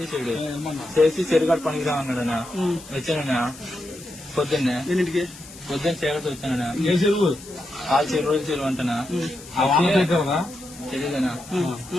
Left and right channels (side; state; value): left; noise; hiss, 18 dB below the sound